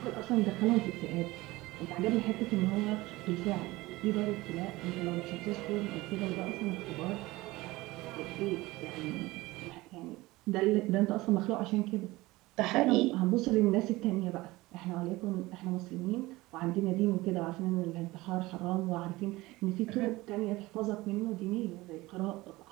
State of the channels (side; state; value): left; quieter; 19.9 dB